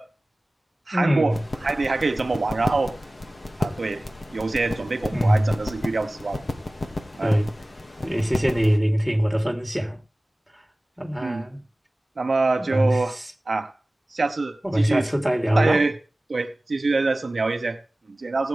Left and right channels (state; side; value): normal; both; correlation 0.98